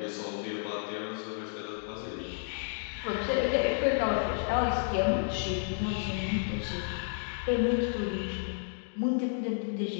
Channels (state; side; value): silent; right; digital silence